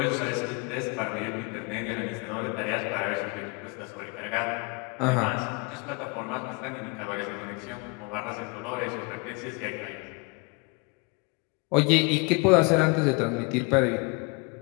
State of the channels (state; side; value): quieter; right; 31.5 dB